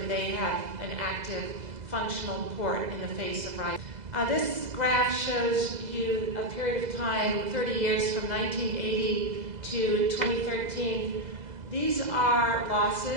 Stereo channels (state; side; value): late; left; 2.0 ms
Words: they have an active, functional port in the face of rise. This graph shows you a period of time, 30 years from 1980 to 2013. These are